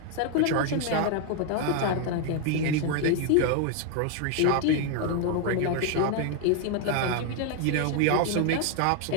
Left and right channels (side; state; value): both; different; correlation 0.00